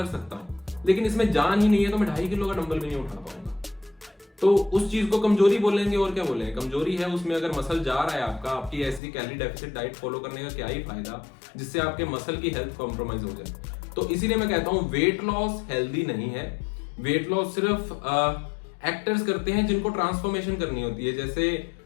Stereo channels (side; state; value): right; drops out; at 9.0 s